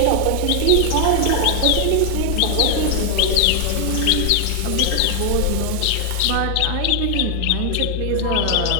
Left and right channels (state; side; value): different; both; correlation 0.00